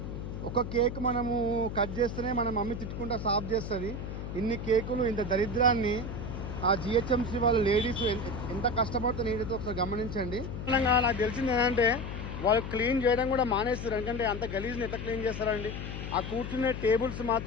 ఒక కేక్ మనము కట్ చేస్తేనే మన మమ్మీ తిట్టుకుంటా సాఫ్ చేస్తుంది. ఇన్ని కేకులు, ఇంత దరిద్రాన్ని ఆ జిహెచ్ఎంసీ వాళ్ళు లేడీస్ ఎంత కష్టపడుతూ నీటితో ఒకసారి గమనించండి. నాకు తెలిసింది ఏంటంటే వాళ్ళు క్లీన్ చేయడం కూడా మానేస్తారు. ఎందుకంటే అంత గలీజ్ని ఎంత క్లీన్ చేస్తారండి. ఆ కూర్చునే టేబుల్స్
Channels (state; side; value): noise; left; hum, 7 dB below the sound